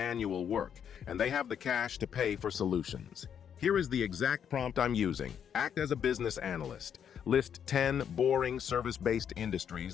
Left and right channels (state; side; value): quieter; right; 8.4 dB